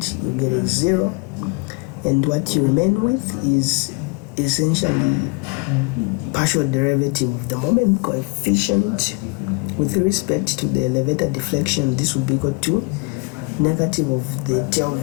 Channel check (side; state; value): right; quieter; 30.1 dB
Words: you get a 0, and what you remain with is essentially partial derivative of the moment coefficient with respect to the elevator deflection. This will be equal to negative of the tail